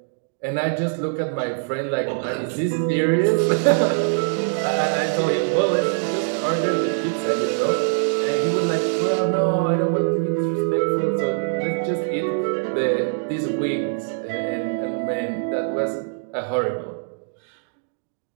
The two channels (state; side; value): silent; left; digital silence